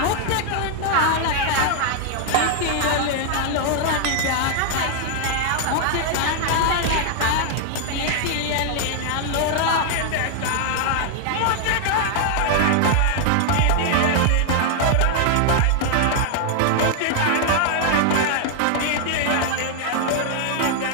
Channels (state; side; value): different; both; correlation 0.00